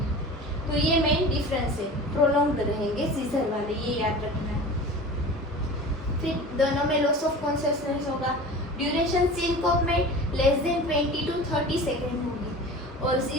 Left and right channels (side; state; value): both; normal; correlation 0.37